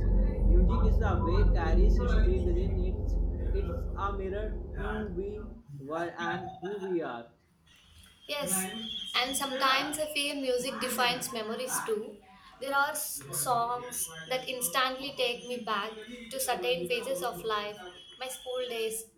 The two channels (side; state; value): both; identical; correlation 1.00